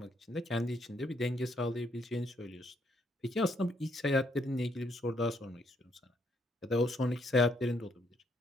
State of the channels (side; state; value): both; normal; correlation 0.71